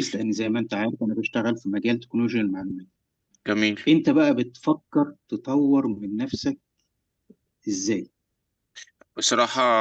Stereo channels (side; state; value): both; identical; correlation 1.00